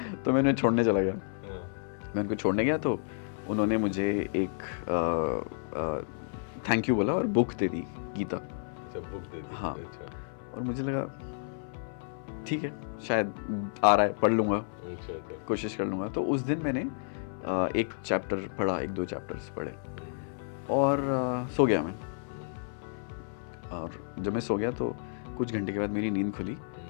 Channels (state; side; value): silent; right; 57 dB below the other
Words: तो मैं उन्हें छोड़ने चला गया. मैं उनको छोड़ने गया तो उन्होंने मुझे एक थैंक यू बोला और बुक दे दी, गीता. अच्छा, बुक दे दी. हाँ. अच्छा. और मुझे लगा ठीक है, शायद आ रहा है, पढ़ लूँगा. अच्छा. कोशिश कर लूँगा. तो उस दिन मैंने एक चैप्टर पढ़ा, 1-2 चैप्टर्स पढ़े. और सो गया मैं. और जब मैं सो गया तो कुछ घंटे के बाद मेरी नींद खुली.